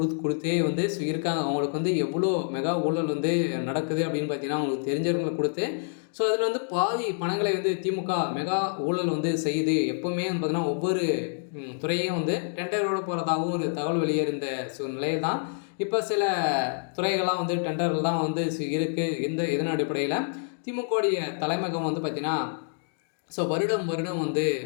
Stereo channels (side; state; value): right; silent; digital silence